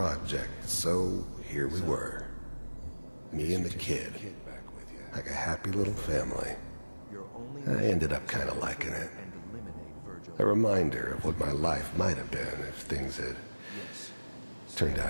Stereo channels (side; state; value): both; inverted; correlation -1.00